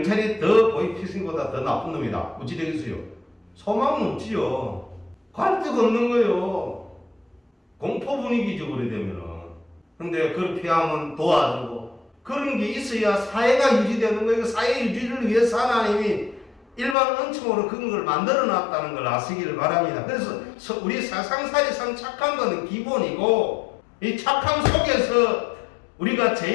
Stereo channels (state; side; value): drops out; right; at 16.9 s